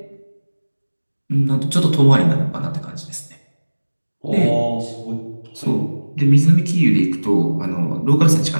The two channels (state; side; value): inverted; both; correlation -1.00